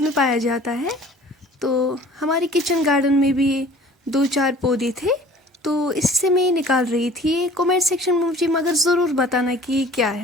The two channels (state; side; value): normal; both; correlation 0.48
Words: में पाया जाता है, तो हमारे किचन गार्डन में भी 2-4 पौधे थे, तो इससे मैं निकाल रही थी। कमेंट सेक्शन में मुझे मगर ज़रूर बताना कि ये क्या